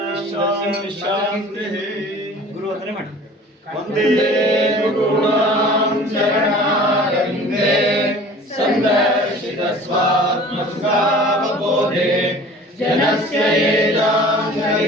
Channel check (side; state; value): both; normal; correlation 0.45